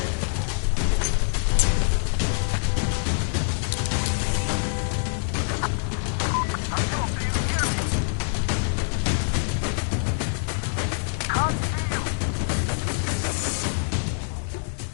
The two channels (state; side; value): silent; right; digital silence